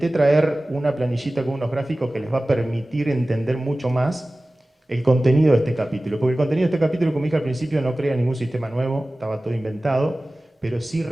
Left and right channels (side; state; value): both; normal; correlation 0.97